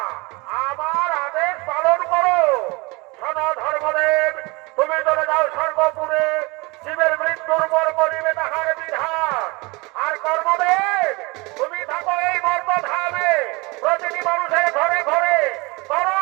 আমার আদেশ পালন করো। শোনো ধর্মদেব, তুমি চলে যাও স্বর্গপুরে, জীবের মৃত্যুর পর করিবে তাহার বিধান। আর কর্মদেব, তুমি থাকো এই মর্তধামে, প্রতিটি মানুষের ঘরে ঘরে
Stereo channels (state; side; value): quieter; left; 25.9 dB